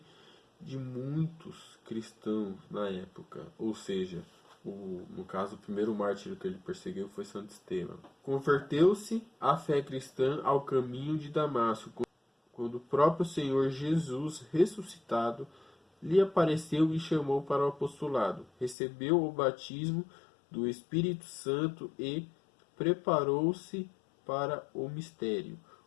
de muitos cristãos na época. Ou seja, no caso, o primeiro mártir que ele perseguiu foi Santo Estevão. Converteu-se à fé cristã ao caminho de Damasco, quando o próprio Senhor Jesus, ressuscitado, lhe apareceu e chamou para o apostolado. Recebeu o batismo do Espírito Santo e preparou-se para o mistério.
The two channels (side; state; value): right; drops out; at 18.8 s